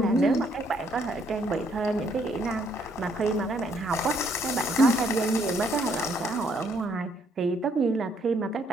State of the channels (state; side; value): normal; both; correlation 0.69